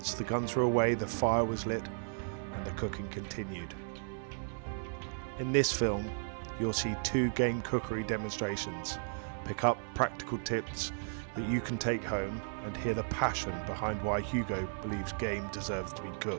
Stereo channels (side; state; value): left; silent; 55 dB below the other